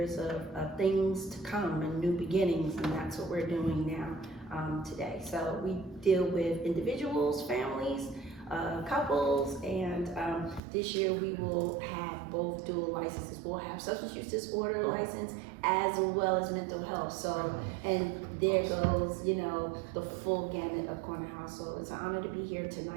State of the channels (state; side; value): drops out; left; at 10.6 s